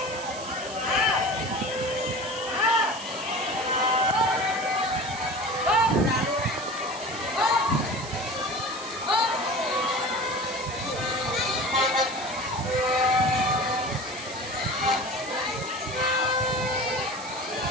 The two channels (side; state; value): right; noise; hiss, 13 dB below the sound